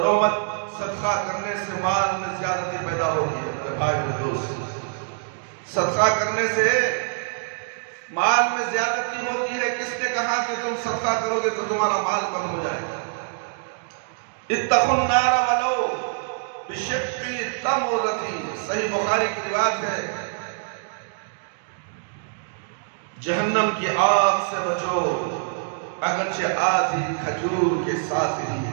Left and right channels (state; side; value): silent; left; digital silence